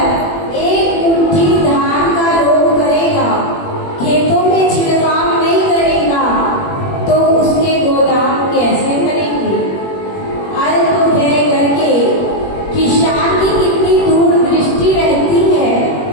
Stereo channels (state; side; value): late; right; 21 ms